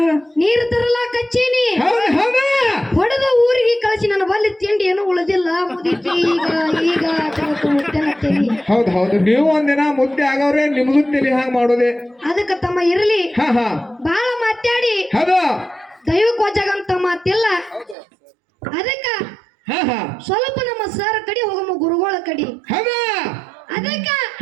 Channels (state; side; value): drops out; left; at 17.9 s